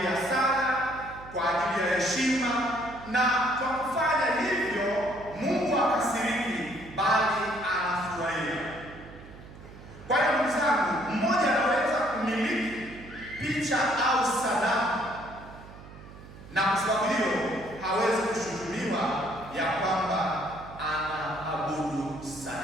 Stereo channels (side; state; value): right; noise; hum, 17 dB below the sound